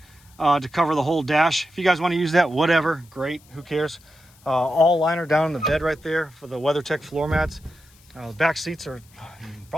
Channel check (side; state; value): left; noise; hiss, 28 dB below the sound